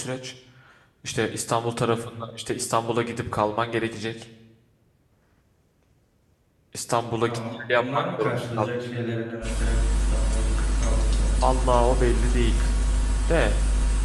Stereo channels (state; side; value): identical; both; correlation 1.00